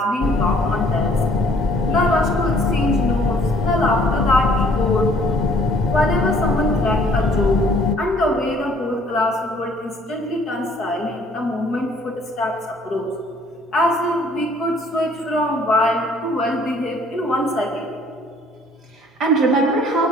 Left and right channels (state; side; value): normal; both; correlation 0.59